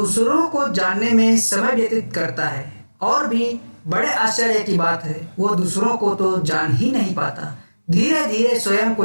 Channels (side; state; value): both; inverted; correlation -1.00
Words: को जानने में समय व्यतीत करता है। और भी बड़े आश्चर्य की बात है, वह दूसरों को तो जान ही नहीं पाता। धीरे धीरे स्वयं